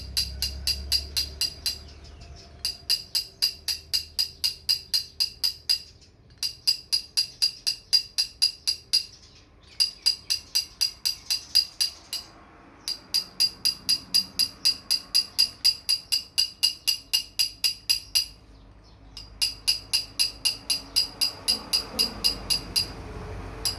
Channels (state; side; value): identical; both; correlation 1.00